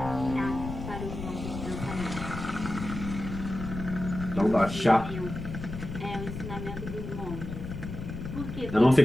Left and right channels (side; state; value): left; noise; rumble, 7 dB below the sound